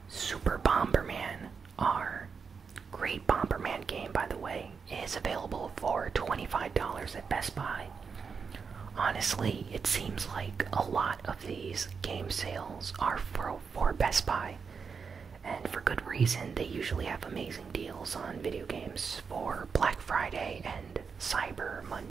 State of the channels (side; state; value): left; quieter; 5.7 dB